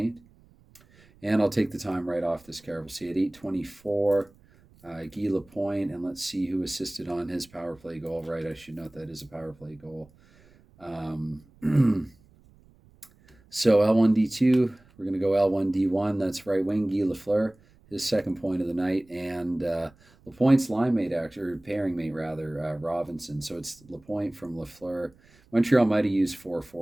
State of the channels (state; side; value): noise; right; rumble, 28 dB below the sound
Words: And I'll take the time right off this card. We'll see at 8:24, Guy Lapointe. And let's see who assisted on his power play goal. Right, I should note that is a power play goal. So L1D2, we're going to go L1D1. That's right wing, Guy Lafleur, his second point of the night. And Lapointe's line mate, or pairing mate, rather, Robinson. So it's Lapointe from Lafleur. Montreal might have used four